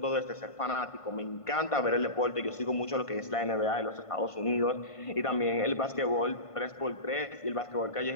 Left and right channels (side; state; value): right; late; 1.5 ms